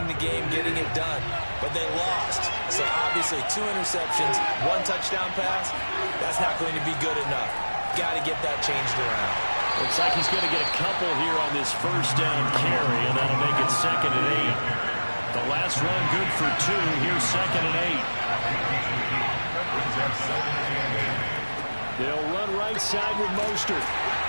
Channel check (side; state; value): both; inverted; correlation -1.00